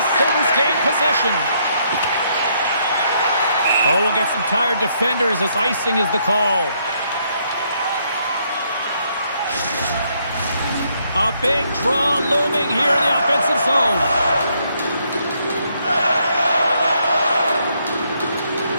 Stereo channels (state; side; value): inverted; both; correlation -0.72